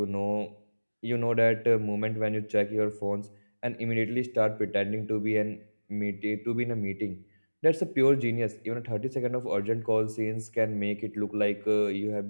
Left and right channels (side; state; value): both; inverted; correlation -1.00